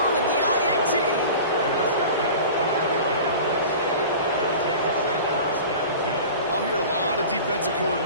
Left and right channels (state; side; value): inverted; both; correlation -0.37